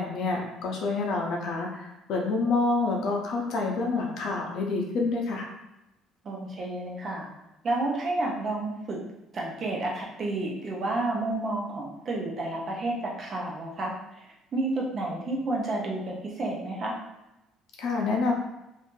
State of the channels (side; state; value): both; normal; correlation 0.61